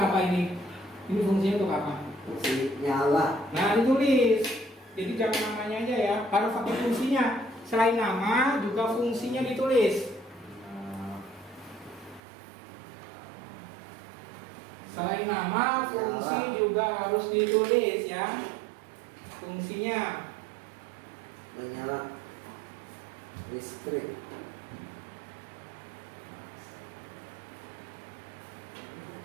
apa ini? Ini fungsinya untuk apa? Fungsi nyala. Nah, ditulis. Jadi jangan namanya aja ya, harus pakai fungsinya. Selain nama, juga fungsinya ditulis. Selain nama, fungsi juga harus ditulis ya. Fungsinya. Menyala listrik.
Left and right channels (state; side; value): drops out; left; at 12.2 s